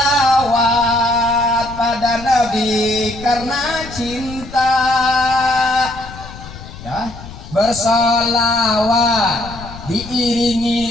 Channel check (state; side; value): noise; left; rumble, 14 dB below the sound